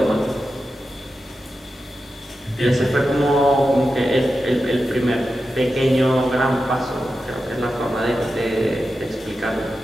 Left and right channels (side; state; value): both; normal; correlation 0.90